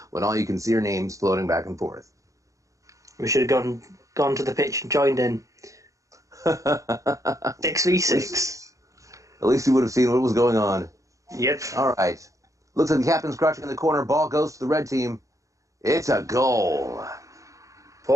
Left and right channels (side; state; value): left; late; 0.16 ms